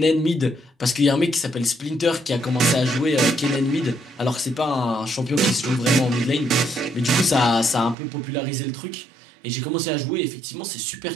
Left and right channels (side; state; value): left; drops out; at 8.0 s